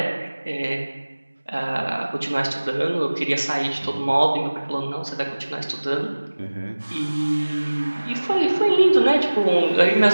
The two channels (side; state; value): both; inverted; correlation -1.00